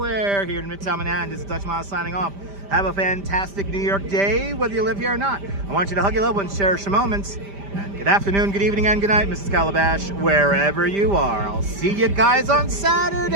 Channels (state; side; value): late; left; 5.1 ms